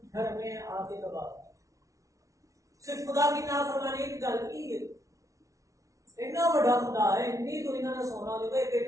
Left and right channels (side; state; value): left; late; 0.16 ms